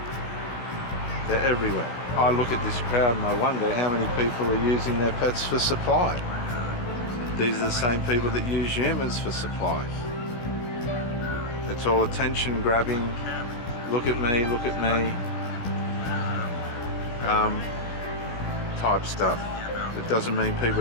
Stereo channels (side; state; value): right; late; 17 ms